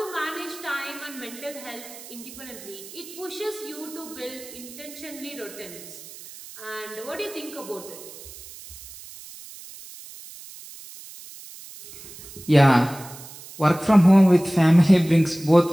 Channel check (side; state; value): right; noise; hiss, 16 dB below the sound